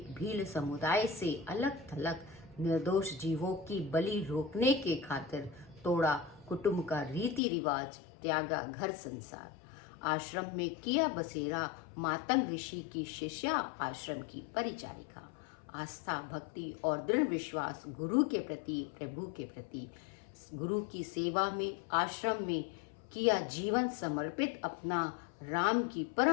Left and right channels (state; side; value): drops out; right; at 7.4 s